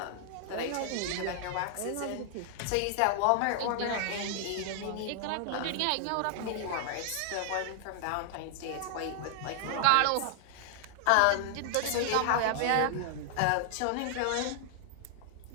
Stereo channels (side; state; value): both; different; correlation 0.00